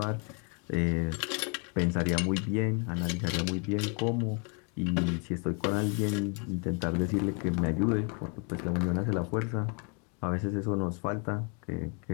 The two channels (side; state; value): right; quieter; 36.8 dB